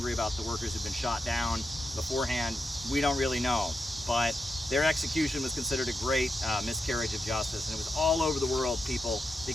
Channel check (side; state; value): both; normal; correlation 0.87